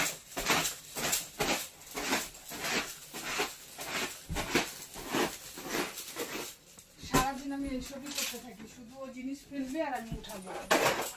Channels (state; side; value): identical; both; correlation 1.00